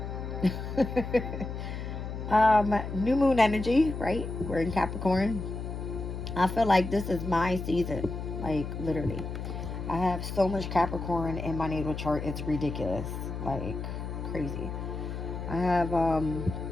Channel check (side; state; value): left; noise; hum, 6 dB below the sound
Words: New moon energy, right? We're in Capricorn. I feel like this is my season, like literally. I have so much Capricorn in my natal chart, it's ridiculous, like crazy. I have a